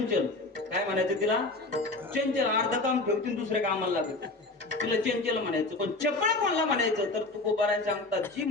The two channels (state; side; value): quieter; right; 3.1 dB